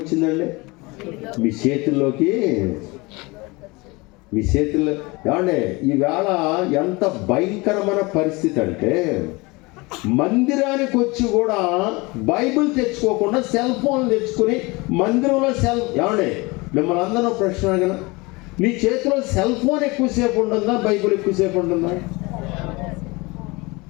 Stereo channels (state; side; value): quieter; right; 24.7 dB